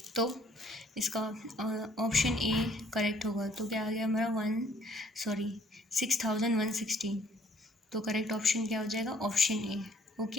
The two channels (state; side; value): normal; both; correlation 0.61